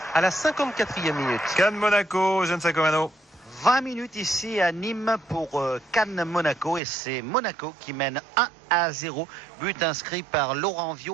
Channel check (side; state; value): left; drops out; at 6.8 s